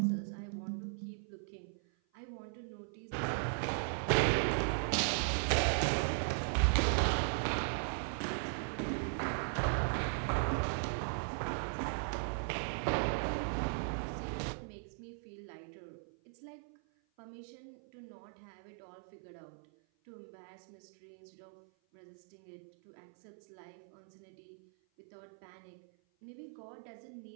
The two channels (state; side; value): silent; left; 52 dB below the other